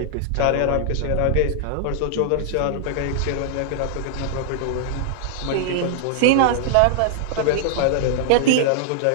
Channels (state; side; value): different; both; correlation -0.01